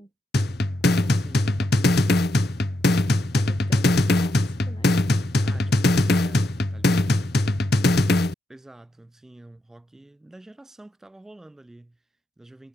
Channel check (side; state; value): both; normal; correlation 0.82